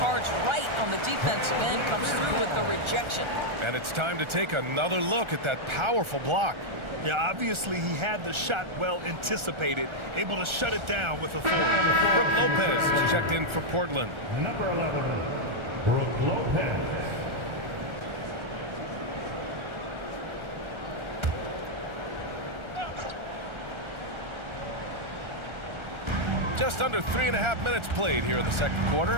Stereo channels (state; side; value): late; left; 1.4 ms